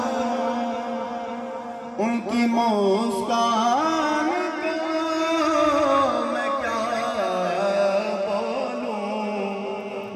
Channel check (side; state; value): both; identical; correlation 1.00